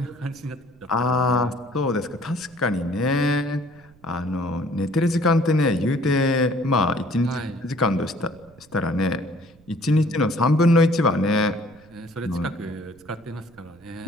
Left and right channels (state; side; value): noise; right; rumble, 27 dB below the sound